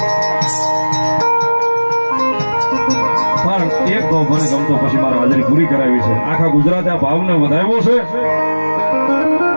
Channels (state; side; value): inverted; both; correlation -1.00